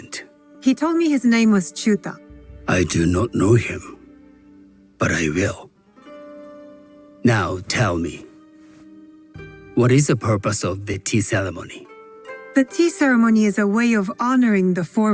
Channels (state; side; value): identical; both; correlation 1.00